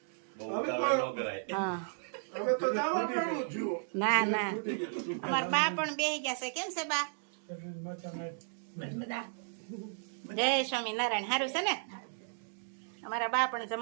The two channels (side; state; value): left; silent; digital silence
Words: બહુ ઉતાવળ ન કરાય. હા હવે તો જવા ટાણું છું ના ના અમારા બા પણ બેસી ગયા છે. કેમ છે બા? જય સ્વામિનારાયણ. સારું છે ને? અમારા બા પણ